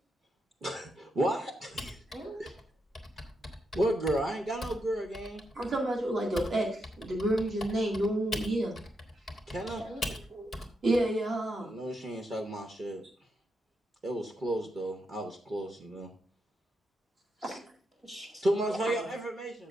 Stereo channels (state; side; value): normal; both; correlation 0.83